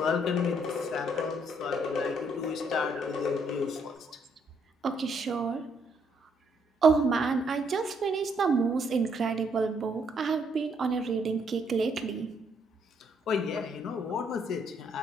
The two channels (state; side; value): normal; both; correlation 0.71